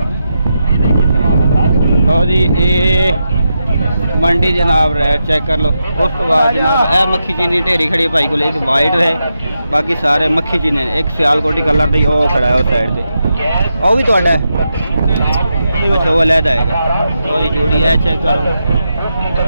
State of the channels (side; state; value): both; inverted; correlation -0.86